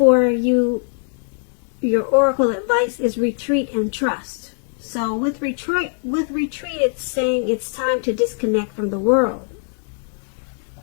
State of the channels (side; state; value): right; silent; 62 dB below the other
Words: you, your oracle advice, is retreat and trust. So with retreat, it's saying it's time to disconnect from the world.